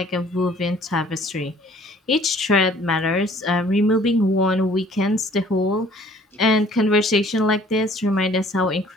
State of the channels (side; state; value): both; normal; correlation 0.56